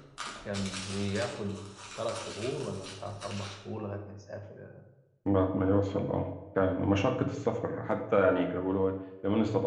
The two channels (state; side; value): identical; both; correlation 1.00